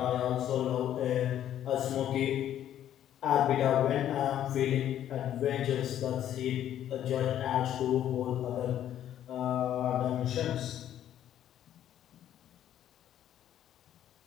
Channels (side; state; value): right; quieter; 11.1 dB